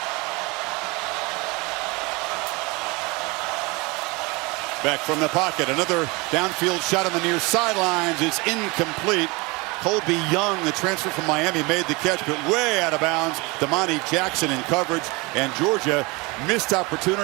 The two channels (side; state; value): left; quieter; 25.9 dB